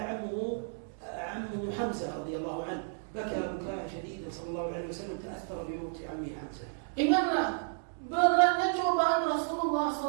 عمه حمزة رضي الله عنه، بكى بكاء شديدا صلى الله عليه وسلم، تأثر بموت عمه حمزة. Ingatlah beratnya cobaan Rasulullah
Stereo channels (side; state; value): left; silent; digital silence